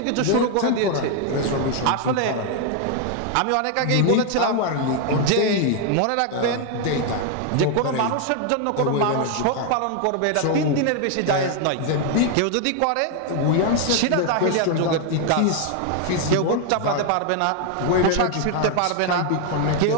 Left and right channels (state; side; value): different; both; correlation 0.01